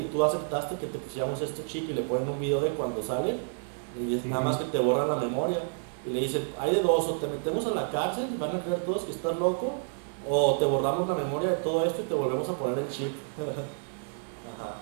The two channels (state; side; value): silent; left; 58 dB below the other